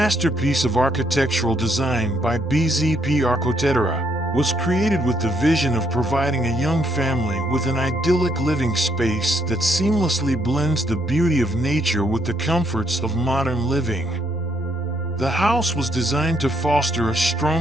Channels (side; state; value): both; normal; correlation 0.72